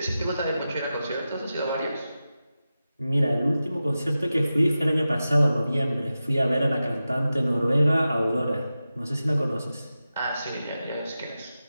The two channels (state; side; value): inverted; both; correlation -0.93